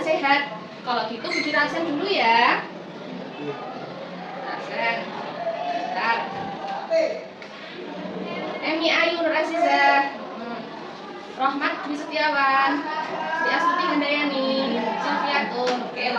Kalau gitu Budi rasen dulu ya. Rasen. Bentar. Emi Ayu Nur Azizah, Rohmat Dwi Setiawan, Sri Astuti Handayani, Sofiatun. Oke,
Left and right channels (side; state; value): both; identical; correlation 1.00